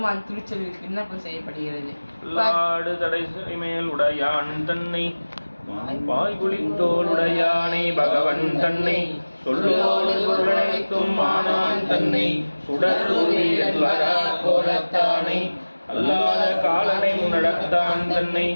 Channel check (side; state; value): both; inverted; correlation -1.00